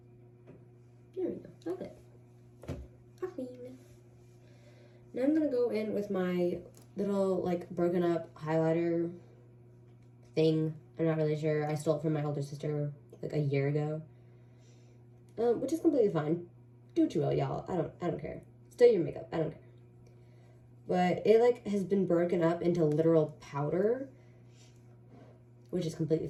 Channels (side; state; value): both; identical; correlation 1.00